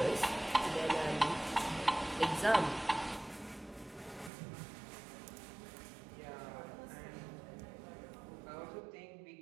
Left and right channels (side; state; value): left; drops out; at 4.3 s